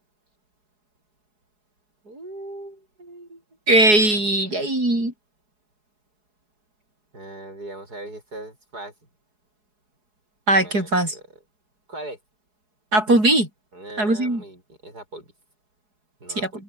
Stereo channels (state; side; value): late; left; 4.7 ms